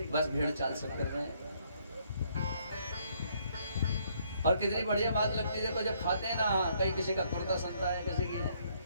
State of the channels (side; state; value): both; inverted; correlation -0.68